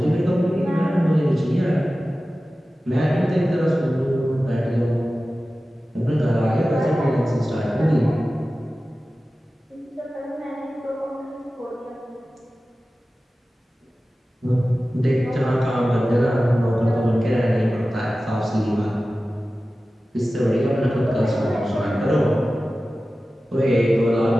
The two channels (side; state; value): both; normal; correlation 0.95